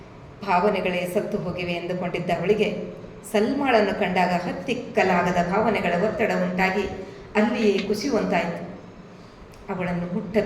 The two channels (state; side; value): identical; both; correlation 1.00